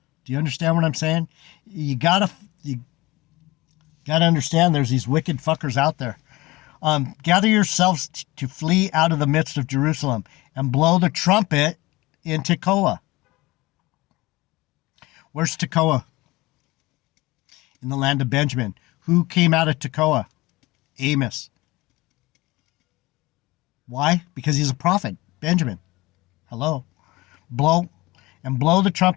Do you understand what I'm saying? You gotta understand there's these wicked fuckers out there. Gather yourselves to flee out of the midst of Jerusalem and blow the trumpet in Tekoa. Where's Tekoa? In the land of Benjamin. Who came out of Tekoa? Amos. Why? Because he's a prophet. Benjamin. Hello. Blow the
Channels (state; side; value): quieter; right; 20.7 dB